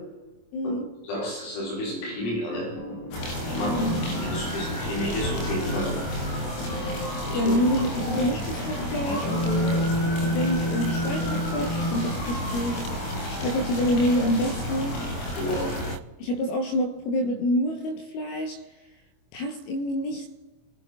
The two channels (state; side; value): late; right; 25 ms